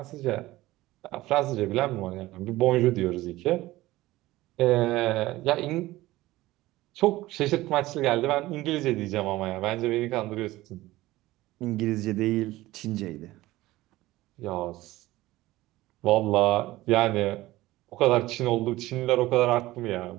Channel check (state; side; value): quieter; left; 17.6 dB